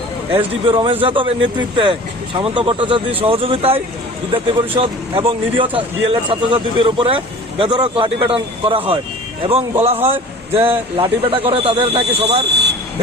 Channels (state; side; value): normal; both; correlation 0.42